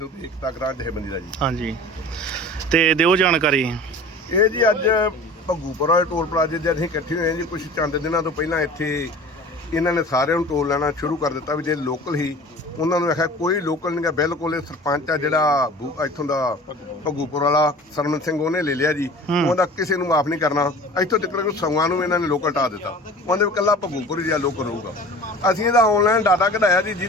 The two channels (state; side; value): normal; both; correlation 0.41